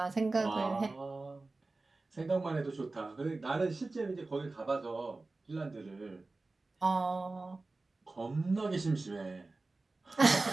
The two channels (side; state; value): left; quieter; 3.4 dB